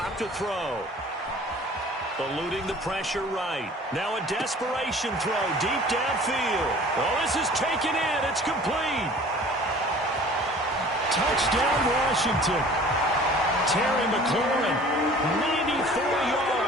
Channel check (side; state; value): both; normal; correlation 0.47